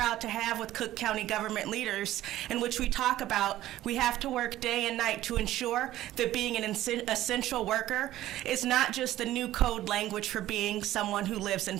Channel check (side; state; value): left; quieter; 14.4 dB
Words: to have with Cook County government leaders in which we talk about We have to work day and night to ensure that being an essential worker is not just the new code language for being someone who lives in